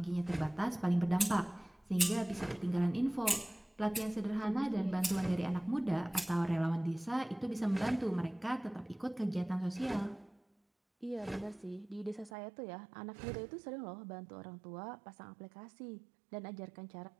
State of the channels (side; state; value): left; drops out; at 12.3 s